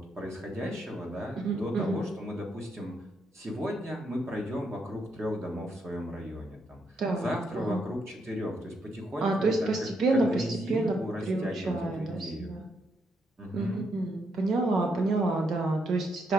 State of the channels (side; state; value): both; normal; correlation 0.77